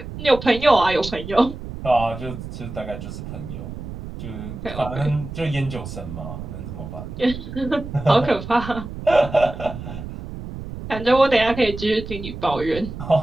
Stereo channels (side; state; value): right; noise; rumble, 10 dB below the sound